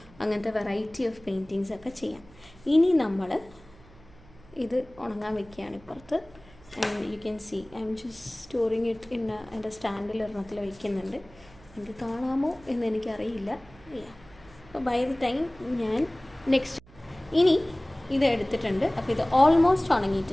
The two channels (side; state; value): right; noise; hum, 24 dB below the sound